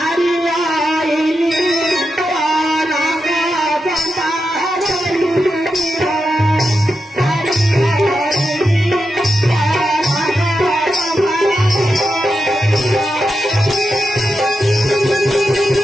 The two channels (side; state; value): both; normal; correlation 0.88